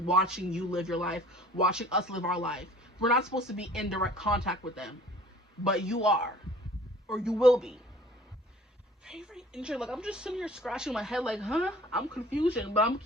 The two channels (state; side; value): normal; both; correlation 0.50